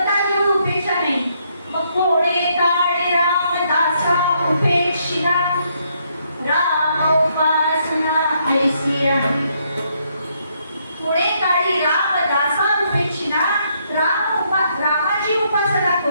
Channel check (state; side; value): inverted; both; correlation -0.73